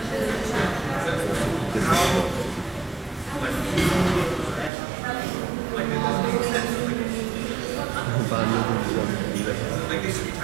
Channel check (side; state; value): left; drops out; at 4.7 s